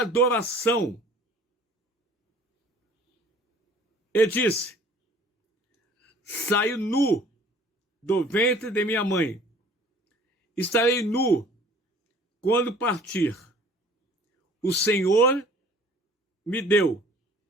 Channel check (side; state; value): both; normal; correlation 0.52